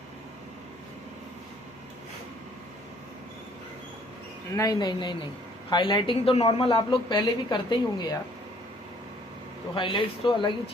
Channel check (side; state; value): both; normal; correlation 0.61